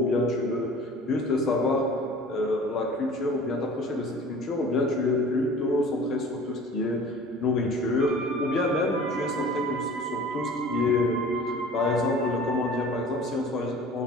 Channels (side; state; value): both; normal; correlation 0.44